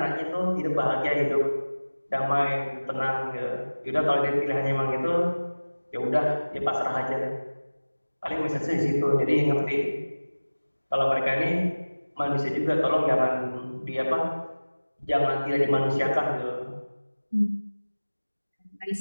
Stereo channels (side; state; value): both; inverted; correlation -1.00